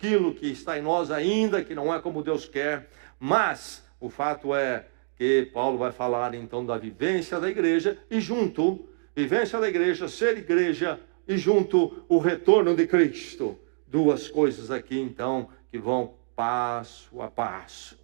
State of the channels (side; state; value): left; silent; digital silence